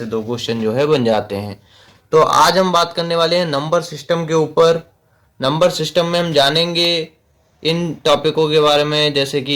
2 क्वेश्चन जो है बन जाते हैं। तो आज हम बात करने वाले हैं नंबर सिस्टम के ऊपर। नंबर सिस्टम में हम जानेंगे इन टॉपिकों के बारे में, जैसे कि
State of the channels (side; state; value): both; identical; correlation 1.00